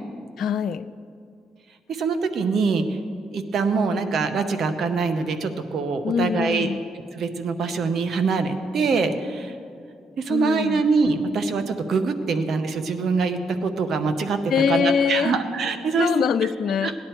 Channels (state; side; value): normal; both; correlation 0.72